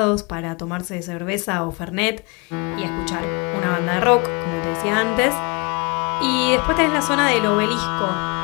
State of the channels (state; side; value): quieter; right; 29.1 dB